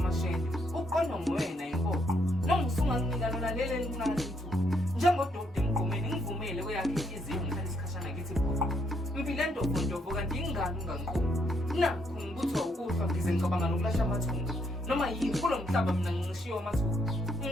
Uqondo ngwena impoqo. Nongisunga nginika lona lele lincane ithuba. Njengododa emgomeni ngivumele kweyakhe inhliziyo ngihlala isikhashana kithi phoqo. Impilo entofontofo kanti ingane ungangiqomi. Nakho ngibutho ukuhlwa ngize ngicabanga nokulahla amathunga. Noma yini kulo mhlaba mina ngishiyo amathuba.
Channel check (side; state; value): both; normal; correlation 0.73